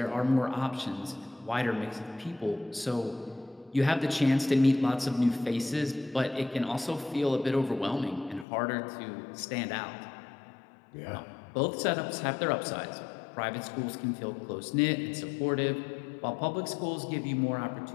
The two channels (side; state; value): right; drops out; at 8.5 s